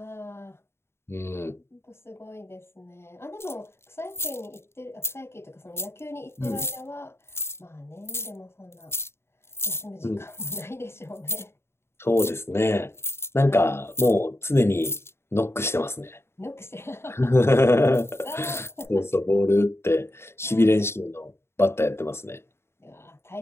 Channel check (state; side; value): late; right; 0.12 ms